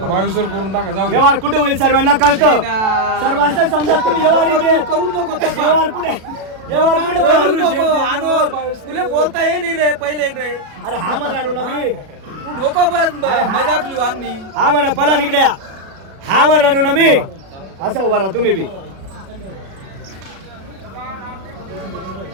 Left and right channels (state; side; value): late; left; 36 ms